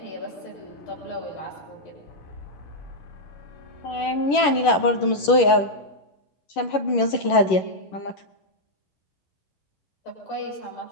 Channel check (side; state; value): right; late; 11 ms